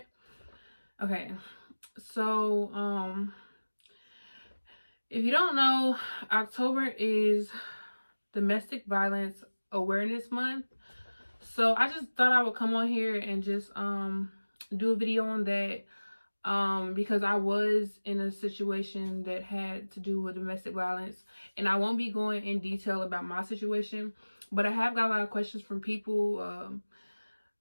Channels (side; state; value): both; inverted; correlation -1.00